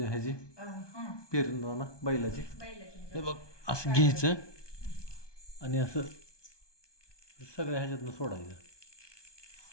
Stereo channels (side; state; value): right; late; 1.2 ms